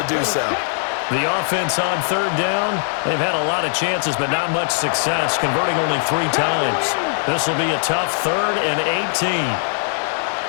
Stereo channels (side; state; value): right; silent; 60 dB below the other